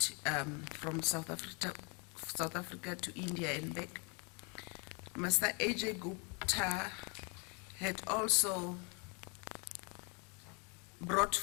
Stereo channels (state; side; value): quieter; right; 33.4 dB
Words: from South Africa to India and back, Mr. Ajay Gupta had also brought